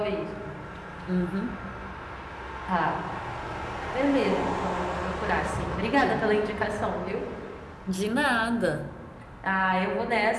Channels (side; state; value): both; identical; correlation 1.00